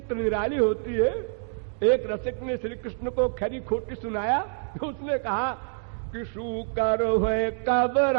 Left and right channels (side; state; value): left; silent; 60 dB below the other